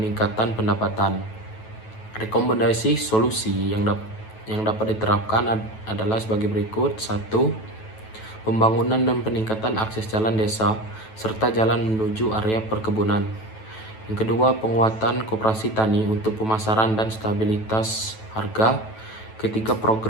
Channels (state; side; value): late; right; 9.2 ms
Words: pendapatan. Rekomendasi solusi yang dapat diterapkan adalah sebagai berikut. 1. Pembangunan dan peningkatan akses jalan desa serta jalan menuju area perkebunan. Yang kedua, penguatan koperasi tani untuk pemasaran dan stabilitas harga. Ketiga,